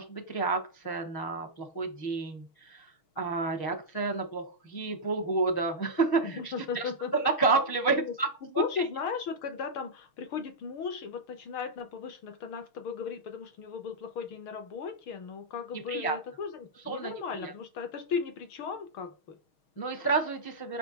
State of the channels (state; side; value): late; right; 6.3 ms